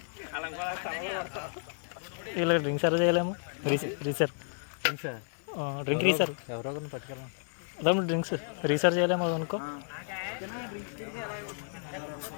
ఇలా డ్రింక్ సర్వ్ చేయలేము. రీసర్ డ్రింక్ రీసర్ ఎవరో పట్టుకెళ్ళాం. అదే డ్రింక్స్ రీసర్ చేయలేము అనుకో.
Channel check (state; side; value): silent; right; 56 dB below the other